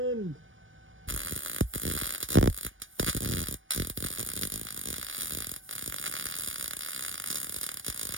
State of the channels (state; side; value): late; left; 0.57 ms